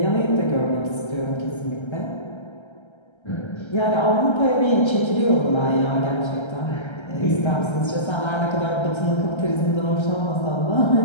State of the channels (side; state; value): right; late; 1.3 ms